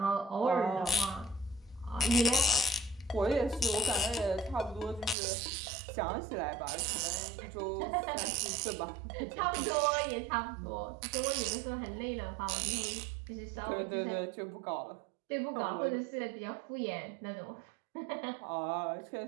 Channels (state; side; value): drops out; left; at 5.2 s